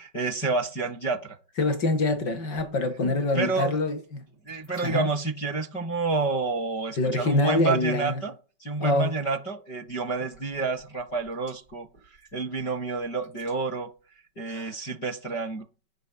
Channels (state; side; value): late; right; 5.3 ms